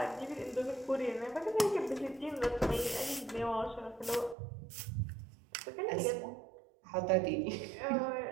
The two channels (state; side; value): drops out; left; at 4.4 s